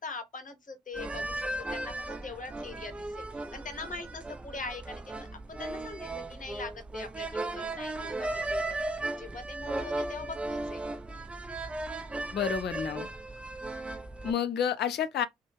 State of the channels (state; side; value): normal; both; correlation 0.62